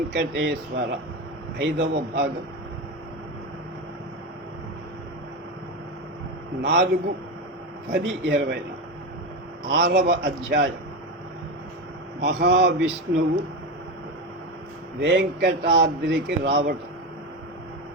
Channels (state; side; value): normal; both; correlation 0.17